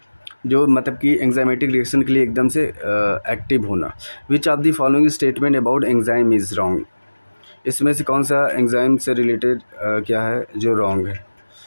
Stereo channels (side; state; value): both; inverted; correlation -1.00